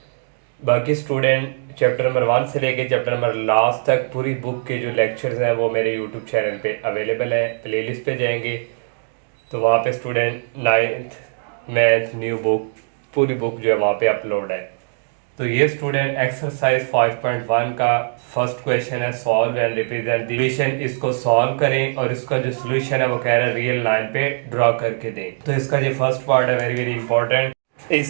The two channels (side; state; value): left; silent; 65 dB below the other